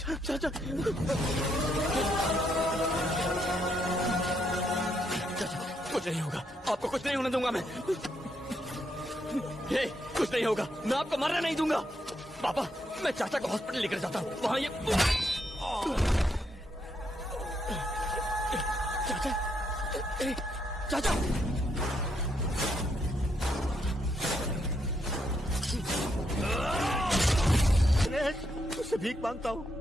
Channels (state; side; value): normal; both; correlation 0.77